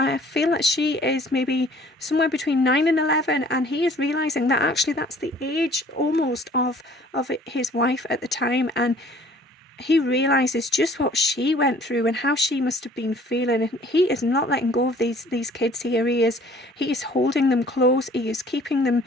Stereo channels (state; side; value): normal; both; correlation 0.54